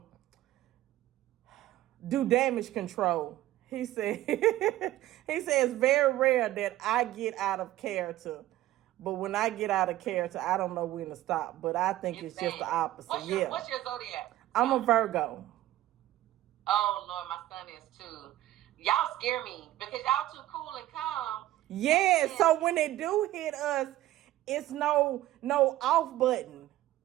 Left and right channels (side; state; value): left; quieter; 14.9 dB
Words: do damage control. He said it's very rare that I get out of character. But when I get out of character, I don't know when to stop. But I think it's just the opposite. What's your zodiac? I'm a Virgo. Oh Lord, my son is too. Y'all scare me because y'all too cool and calm. Yeah, so when they do hit us, it's no off button.